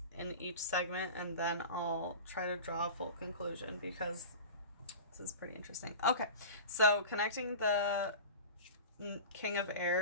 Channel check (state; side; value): inverted; both; correlation -0.33